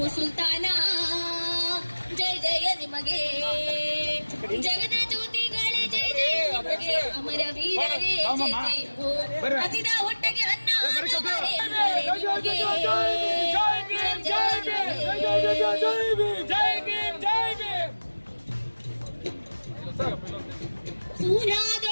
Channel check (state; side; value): inverted; both; correlation -1.00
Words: ಸುಲ್ತಾನ, ಜಯ ಜಯ ನಿಮಗೆ ಜಗದ ಜ್ಯೋತಿಗಳೇ, ಜಯ ಜಯ ನಿಮಗೆ ಅಮರ ವೀರರೇ, ಜಯ ಜಯ ಹೋ ಹಸಿದ ಹೊಟ್ಟೆಗೆ ಅನ್ನ